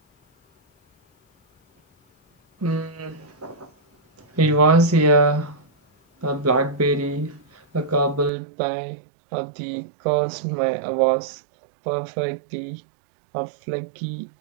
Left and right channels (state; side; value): drops out; left; at 8.3 s